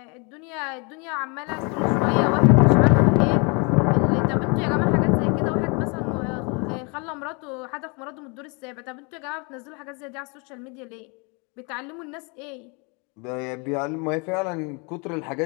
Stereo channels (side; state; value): right; quieter; 32.1 dB